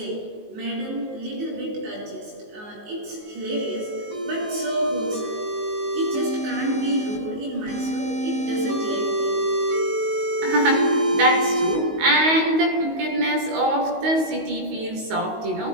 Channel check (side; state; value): left; late; 19 ms